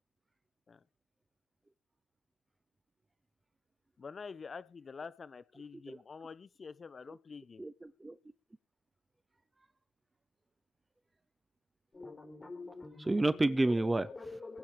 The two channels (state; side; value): normal; both; correlation 0.98